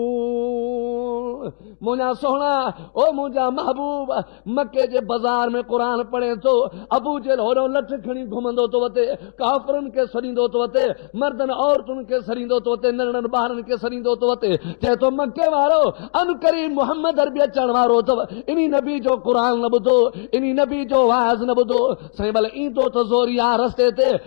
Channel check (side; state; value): right; silent; 55 dB below the other